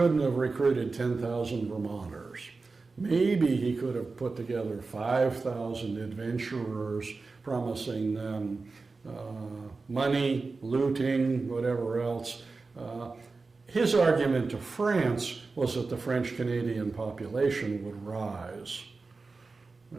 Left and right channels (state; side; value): quieter; left; 4.0 dB